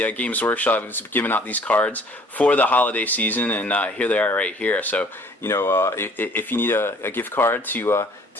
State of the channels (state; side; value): normal; both; correlation 0.55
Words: Games Workshop is giving out these cards for the holiday season, and here they are right here. So, you know, if you need a gift card to